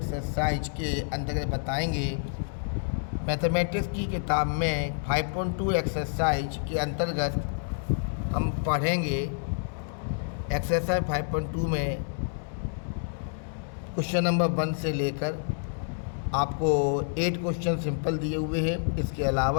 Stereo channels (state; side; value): silent; right; digital silence